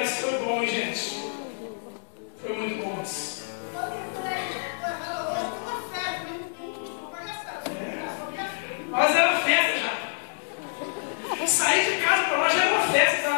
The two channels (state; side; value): silent; right; 60 dB below the other